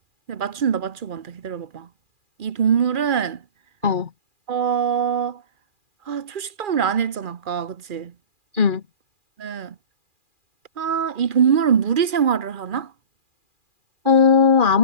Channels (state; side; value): late; left; 2.4 ms